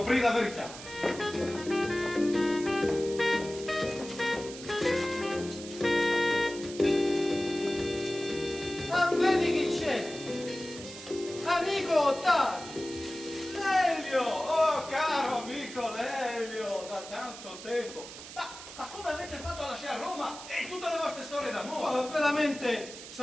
la verità. Vedi chi c'è? Amico Ottavio! Lelio! Oh, caro amico Lelio! Da tanto tempo! Ma come avete fatto a lasciare Roma e tutte le vostre storie d'amore? Oh, veramente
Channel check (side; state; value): right; noise; hiss, 13 dB below the sound